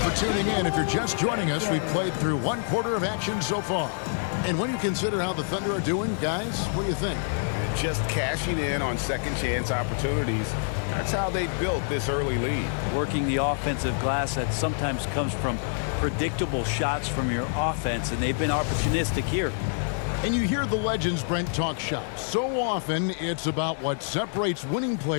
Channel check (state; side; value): silent; right; digital silence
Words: for tuning in. If you're just joining us, we've played through 1 quarter of action so far. And when you consider how the Thunder are doing, guys, what do you think? Just cashing in on second chance opportunities. That's how they built this early lead. Working the offensive glass that sometimes comes from predictable shots from your offense, and they've been opportunistic here. And you hear the legends, Brent, talk shop. So often it's about what separates winning